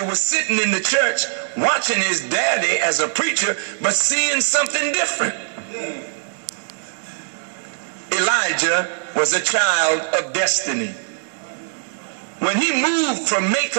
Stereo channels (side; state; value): left; silent; 62 dB below the other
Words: was sitting in the church watching his daddy as a preacher, but seeing something different. Elijah was a child of destiny. When he moved from